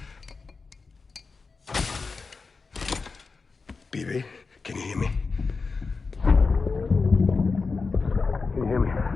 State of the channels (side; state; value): right; quieter; 4.4 dB